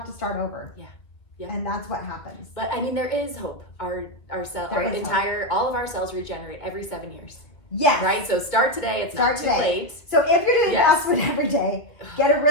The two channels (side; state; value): right; late; 2.2 ms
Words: to start over. Yeah. Yeah. And that's what happens. But I mean, there is hope. All of our cells regenerate every 7 years. Yes. Right? So start today. It's not too late. So if you're doing fast food every day, get a